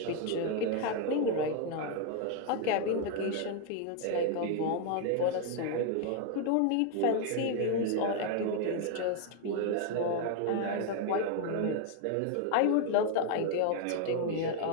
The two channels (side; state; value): both; different; correlation 0.00